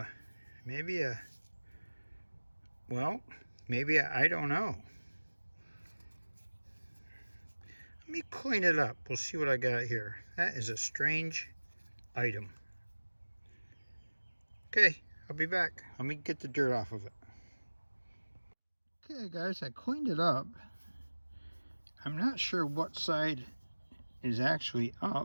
maybe a, well, maybe I don't know. Let me clean it up. We'll see what I got here. That is a strange item. Okay, I'll be back. Let me get the dirt off of it. Okay guys, I cleaned it up. I'm not sure what side is actually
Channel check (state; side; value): inverted; both; correlation -1.00